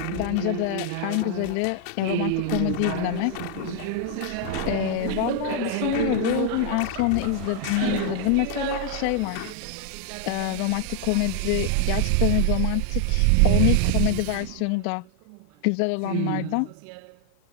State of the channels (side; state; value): both; different; correlation 0.00